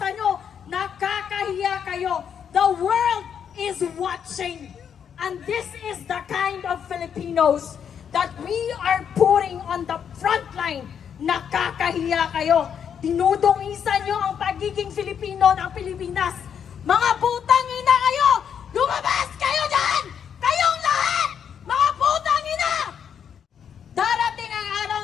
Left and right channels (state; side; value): quieter; right; 8.0 dB